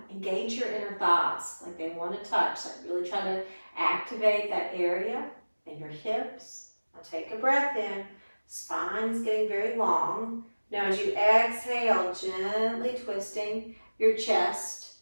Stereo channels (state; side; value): inverted; both; correlation -1.00